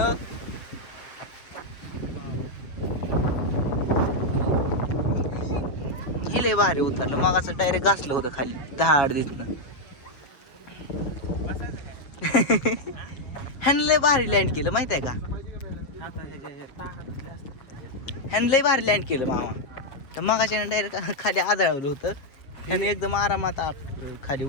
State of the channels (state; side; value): late; right; 7.0 ms